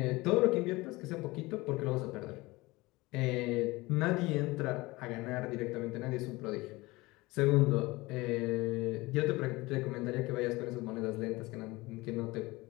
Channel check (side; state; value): right; quieter; 21.7 dB